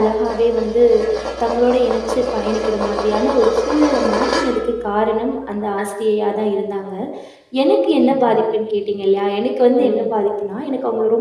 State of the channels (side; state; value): both; identical; correlation 1.00